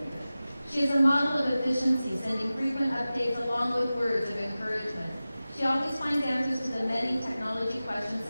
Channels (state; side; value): inverted; both; correlation -0.96